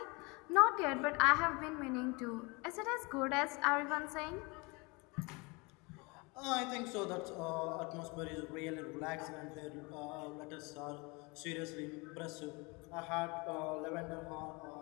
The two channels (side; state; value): right; quieter; 27.7 dB